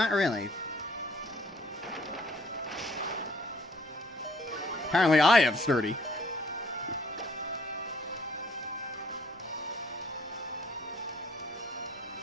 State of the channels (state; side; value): normal; both; correlation 0.60